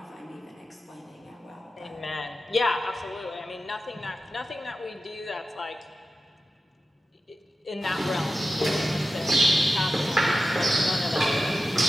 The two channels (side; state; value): both; normal; correlation 0.92